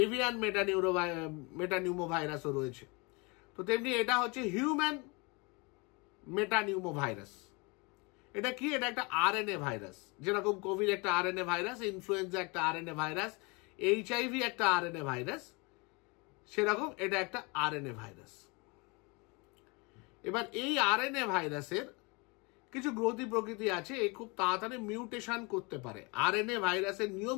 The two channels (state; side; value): quieter; right; 28.7 dB